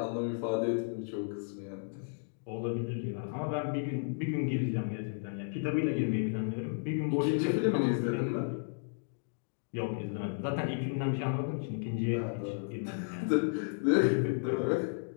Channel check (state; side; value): silent; right; digital silence